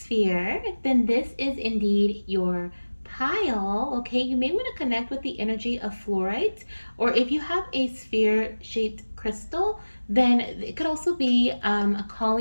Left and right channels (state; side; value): inverted; both; correlation -1.00